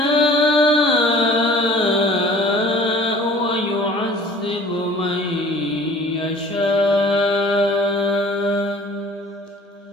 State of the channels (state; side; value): normal; both; correlation 0.48